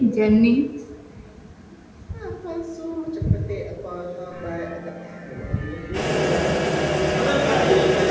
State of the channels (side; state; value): both; identical; correlation 1.00